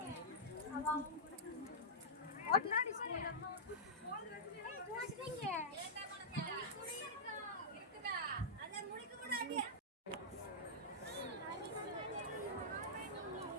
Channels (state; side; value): normal; both; correlation -0.12